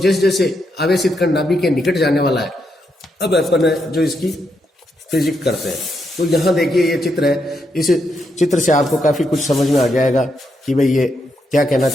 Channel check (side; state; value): both; normal; correlation 0.80